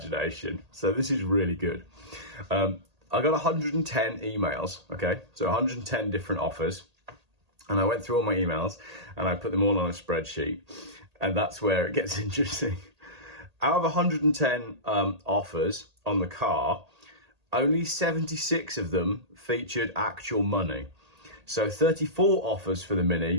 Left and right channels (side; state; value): left; late; 1.8 ms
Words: So this is really good. I got 110 emails, okay? So 110 different offers. And I went through all my emails and I put them all on a spreadsheet. And that's where it gets interesting. Out of 110 offers on the car, only 76 of them featured actual money. So 34 offers for the